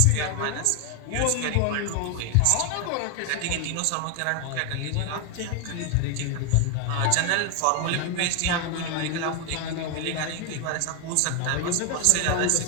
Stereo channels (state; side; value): different; both; correlation 0.01